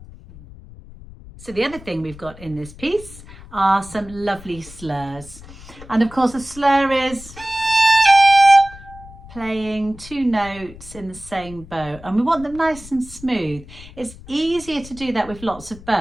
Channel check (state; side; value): noise; left; rumble, 18 dB below the sound